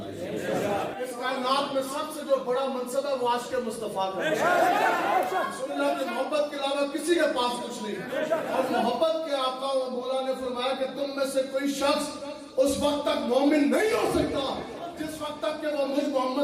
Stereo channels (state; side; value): identical; both; correlation 1.00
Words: آئے۔ اس کائنات میں سب سے جو بڑا منصب ہے وہ عاشق مصطفیٰ کا ہے۔ رسول اللہ کی محبت کے علاوہ کسی کے پاس کچھ نہیں، اور محبت کے آقا و مولا نے فرمایا کہ تم میں سے کوئی شخص اس وقت تک مومن نہیں ہو سکتا جس وقت تک کہ وہ مجھ